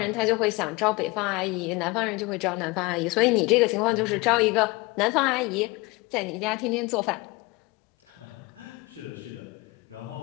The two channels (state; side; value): quieter; right; 24.1 dB